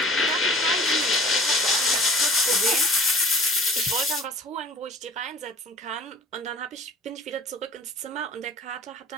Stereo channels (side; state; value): both; normal; correlation 0.47